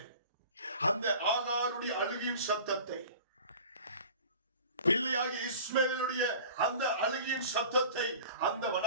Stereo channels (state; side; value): inverted; both; correlation -0.42